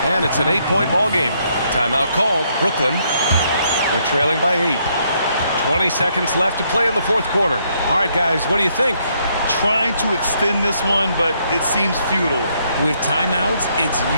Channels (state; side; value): inverted; both; correlation -0.72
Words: and it's an 8-point ball game. Timeout called. Brooklyn. They're trailing by 8. 20 seconds left to play in the fourth quarter. All right, guys, what do you think? Trying to extend this one, but it seems futile. With timeouts, it's